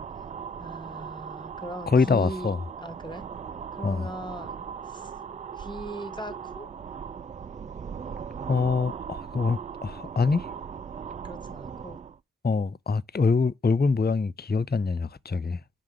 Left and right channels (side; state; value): right; quieter; 3.3 dB